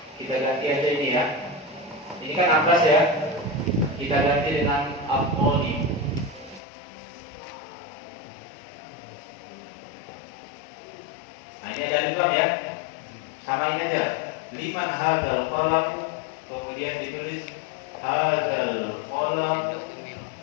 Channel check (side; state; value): right; drops out; at 6.6 s